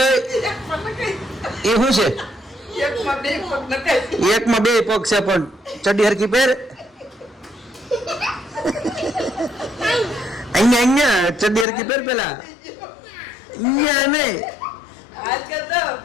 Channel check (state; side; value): drops out; right; at 11.7 s